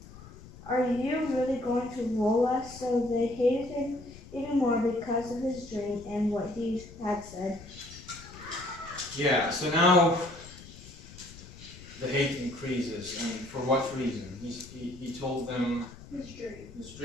"Are you really going to rule us?" So they hated him even more because of his dream and what he had said. Yeah, so now the hate increases, and for what reason? He told them his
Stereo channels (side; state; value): left; noise; rumble, 17 dB below the sound